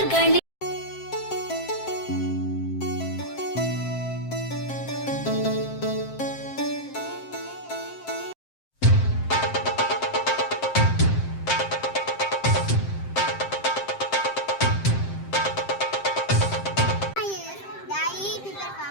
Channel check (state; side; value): late; right; 7.6 ms